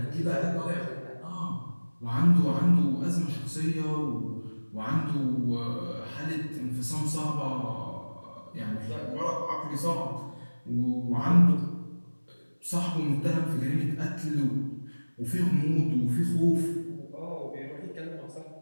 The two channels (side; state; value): both; inverted; correlation -1.00